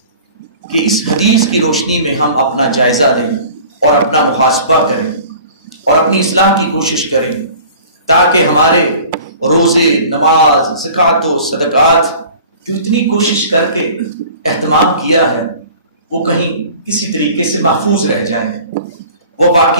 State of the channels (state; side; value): inverted; both; correlation -0.45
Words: کہ اس حدیث کی روشنی میں ہم اپنا جائزہ لیں اور اپنا محاسبہ کریں اور اپنی اصلاح کی کوشش کریں، تاکہ ہمارے روزے، نماز، زکوٰۃ و صدقات جو اتنی کوشش کر کے اہتمام کیا ہے وہ کہیں کسی طریقے سے محفوظ رہ جائیں، وہ